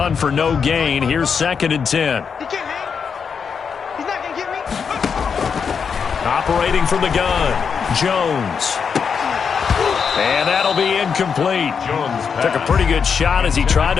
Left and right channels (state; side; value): quieter; right; 6.3 dB